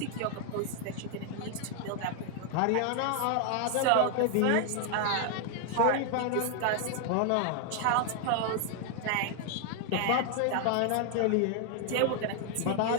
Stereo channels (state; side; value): different; both; correlation 0.00